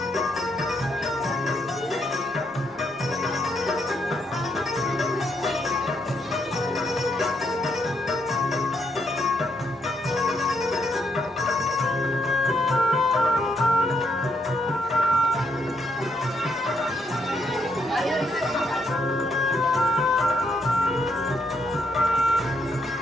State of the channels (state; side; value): normal; both; correlation 0.75